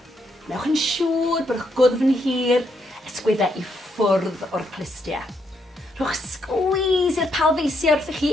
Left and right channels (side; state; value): both; normal; correlation 0.77